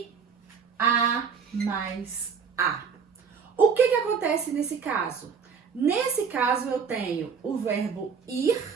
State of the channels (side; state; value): left; quieter; 6.2 dB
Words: A mais a. O que acontece nesse caso? Nesse caso eu tenho o verbo ir.